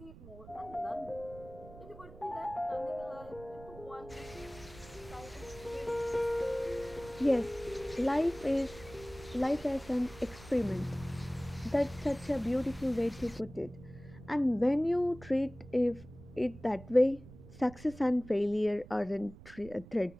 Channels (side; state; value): right; noise; rumble, 18 dB below the sound